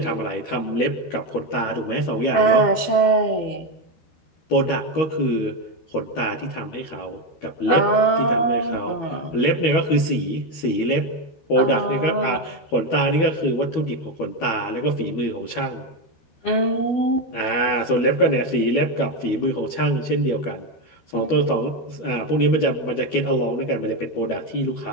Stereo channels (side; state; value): right; late; 12 ms